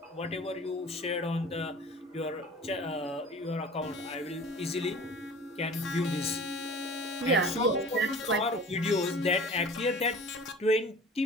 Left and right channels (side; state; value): both; normal; correlation 0.42